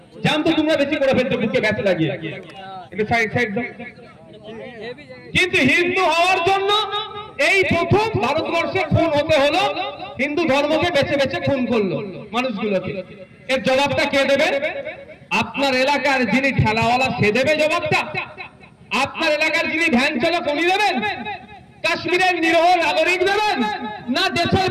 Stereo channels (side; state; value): both; identical; correlation 1.00